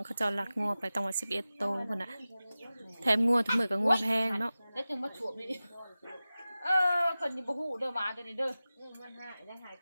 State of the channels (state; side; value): inverted; both; correlation -0.96